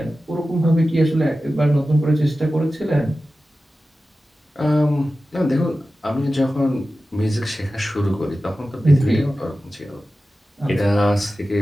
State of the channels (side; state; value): both; normal; correlation 0.94